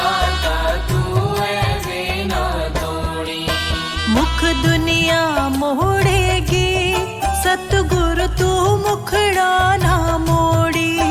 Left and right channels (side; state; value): both; identical; correlation 1.00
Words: तू ऐसे ना तोड़ी। मुख दुनिया मोड़ेगी सतगुरु तू मुखड़ा ना मोड़ी।